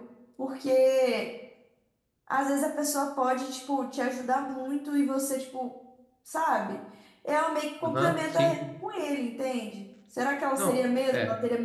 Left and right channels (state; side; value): identical; both; correlation 1.00